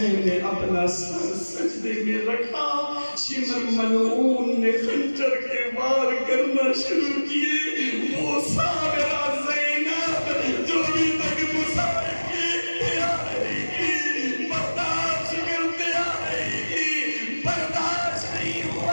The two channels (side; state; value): both; inverted; correlation -1.00